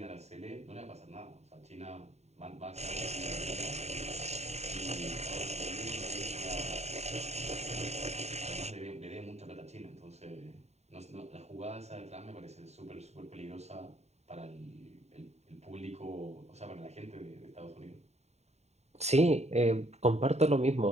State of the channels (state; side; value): late; left; 0.32 ms